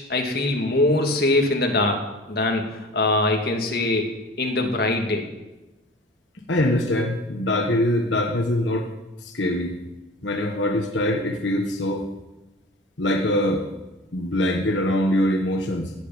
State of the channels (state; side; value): normal; both; correlation 0.40